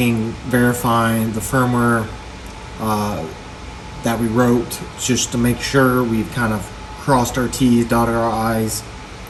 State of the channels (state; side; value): identical; both; correlation 1.00